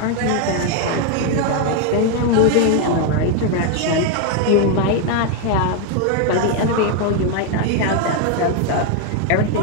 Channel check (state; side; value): different; both; correlation 0.01